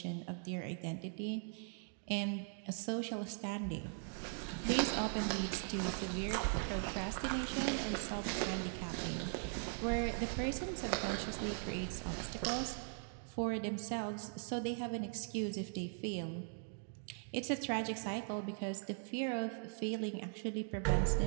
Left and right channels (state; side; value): silent; left; 51 dB below the other